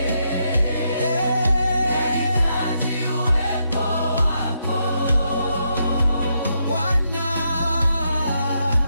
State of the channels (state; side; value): inverted; both; correlation -0.80